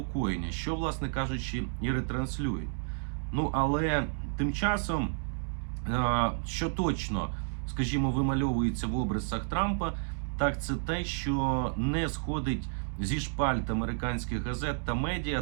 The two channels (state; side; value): silent; left; digital silence